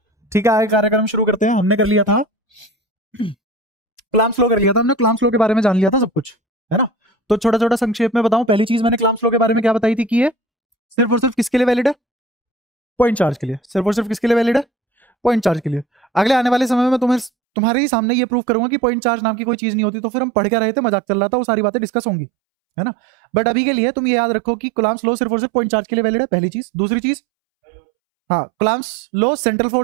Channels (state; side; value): drops out; left; at 17.3 s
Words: ठीक है, आगे कार्यक्रम शुरू करते हैं। हमने कर लिया था क्लाम स्लो कर लिया था हमने, क्लाम स्लो के बारे में जान लिया था सब कुछ, है ना। तो छोटा छोटा संक्षेप में बताऊं, पहली चीज मैंने क्लाम स्लो के बारे में क्या बताई थी कि ये सिर्फ और सिर्फ किसके लिए वैलिड है? पॉइंट चार्ज के लिए। सिर्फ और सिर्फ किसके लिए वैलिड है? पॉइंट चार्ज के लिए। अगले आने वाले समय में तुम्हारे ही सामने ये प्रूव करूंगा कि पॉइंट चार्ज नाम की कोई चीज नहीं होती, तो फिर हम पढ़ के रहे थे, मजाक चल रहा था, वो सारी बातें डिस्कस होंगी, है ना। बट अभी के लिए तुम ये याद रखो कि कूलम्ब्स लॉ सिर्फ और सिर्फ पॉइंट चार्ज के लिए वैलिड है, पहली चीज। दूसरी चीज, हाँ कूलम्ब्स लॉ सेंट्रल